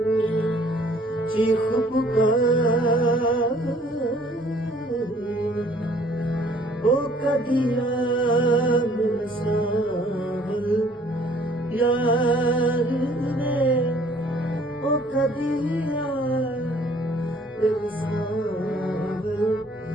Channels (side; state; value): both; normal; correlation 0.58